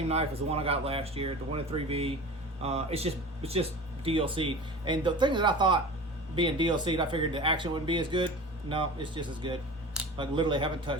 knife as the one I got last year, the one in 3V. It's just DLC. And the thing that I thought being DLC'd, I figured the action wouldn't be as good. No, it's just as good. Like literally haven't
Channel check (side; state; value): both; normal; correlation 0.36